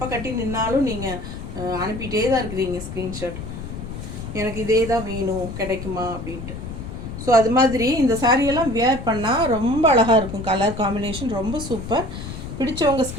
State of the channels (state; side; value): noise; left; rumble, 9 dB below the sound